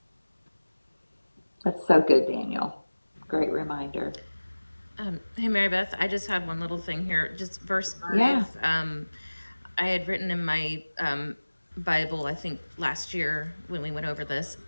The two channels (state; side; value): inverted; both; correlation -1.00